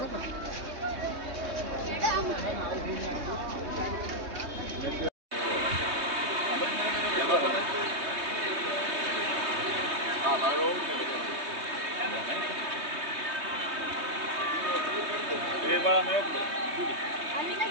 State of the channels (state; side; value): late; left; 3.2 ms